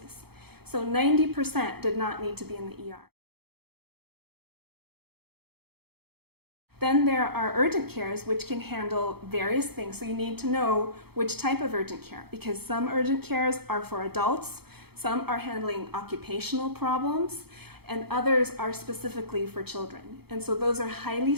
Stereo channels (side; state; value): left; late; 0.96 ms